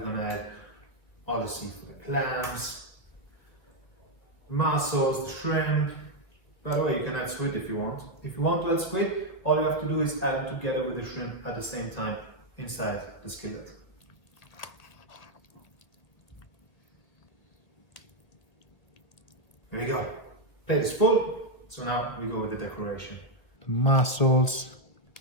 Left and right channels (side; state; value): right; late; 1.6 ms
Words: going to add all the seafood, the clams, the mussels, the shrimp. By the way, you can add squid if you want. If you want to add squid, all you have to do is add them together with the shrimp at the same time inside the skillet. Here we go. Plate is full, so now we go with the decoration. The mussels,